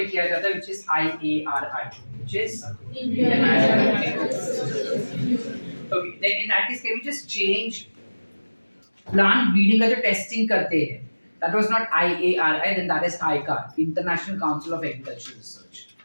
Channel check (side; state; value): both; inverted; correlation -1.00